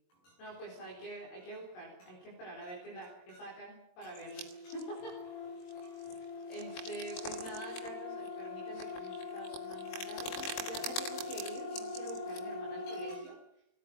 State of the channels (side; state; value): right; late; 22 ms